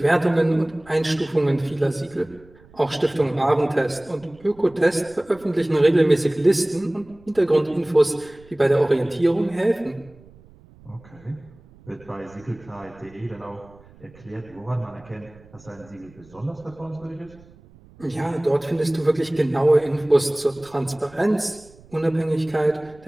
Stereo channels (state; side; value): noise; right; rumble, 25 dB below the sound